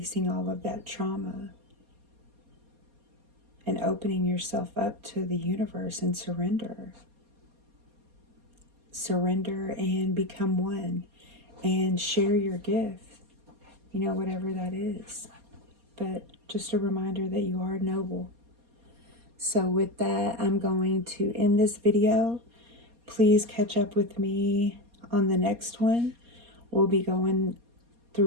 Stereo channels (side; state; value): left; late; 4.2 ms